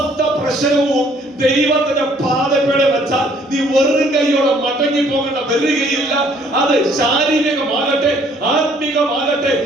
പ്രശ്നവും ദൈവത്തിന്റെ പാദപ്പേടെ വെച്ചാൽ നീ വെറും കൈയോടെ മടങ്ങി പോകേണ്ട വരികയില്ല. അത് ശാരീരികമാകട്ടെ, ആത്മീകമാകട്ടെ,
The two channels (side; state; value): both; normal; correlation 0.61